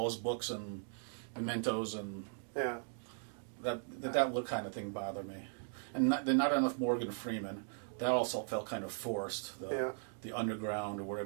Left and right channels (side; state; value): left; silent; digital silence